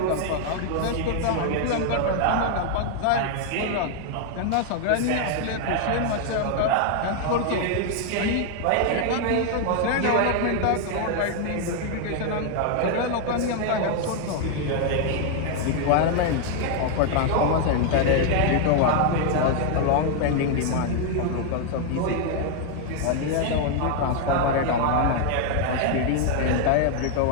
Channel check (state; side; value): different; both; correlation 0.00